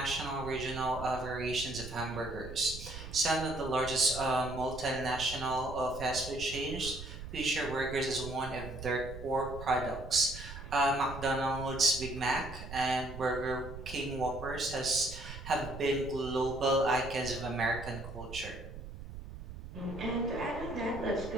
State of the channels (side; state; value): right; noise; rumble, 11 dB below the sound